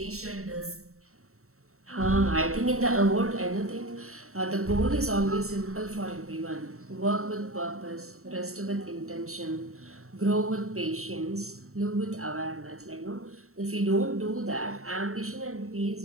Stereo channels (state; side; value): late; left; 0.63 ms